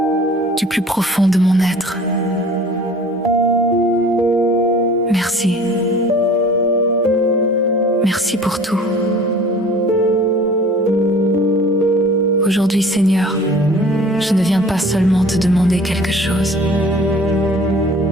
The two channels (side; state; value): both; normal; correlation 0.46